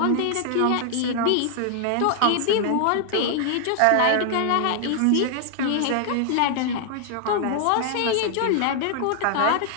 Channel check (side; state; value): both; different; correlation 0.00